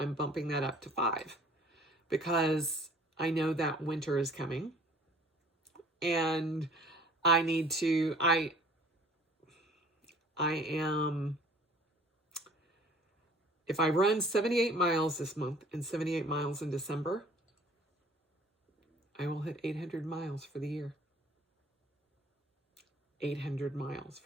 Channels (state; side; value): normal; both; correlation 0.52